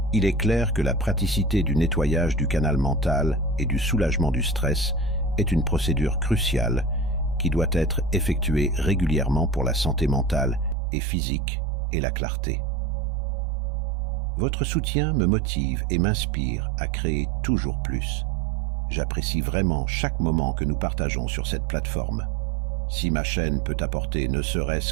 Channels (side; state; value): left; drops out; at 10.8 s